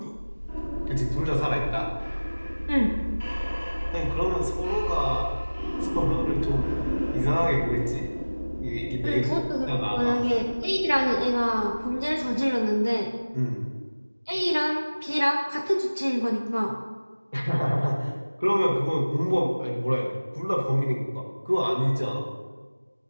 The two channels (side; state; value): both; inverted; correlation -1.00